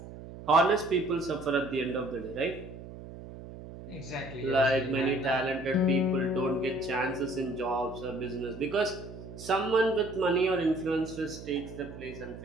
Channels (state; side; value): noise; right; hum, 13 dB below the sound